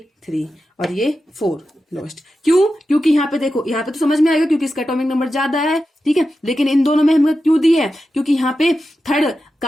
3 और ये 4 लोएस्ट। क्यों? क्योंकि यहाँ पे देखो, यहाँ पे तो समझ में आएगा क्योंकि इसका एटॉमिक नंबर ज्यादा है, ठीक है। लेकिन इन दोनों में हमने क्यों दी है? क्योंकि यहाँ पे थर्ड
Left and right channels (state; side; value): normal; both; correlation 0.91